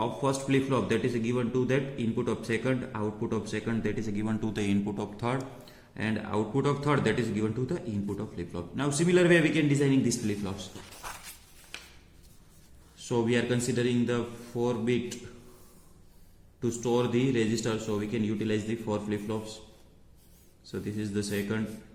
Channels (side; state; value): both; identical; correlation 1.00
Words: first flip-flop, that is given to that input of second, output of second, that is given to the input of third, and output of third, that is given to the input of flip-flop. Now similar way we can designing these flip-flops. So we are considering the 4-bit to store the register, so we can utilize the 4 flip-flops. So this is the second,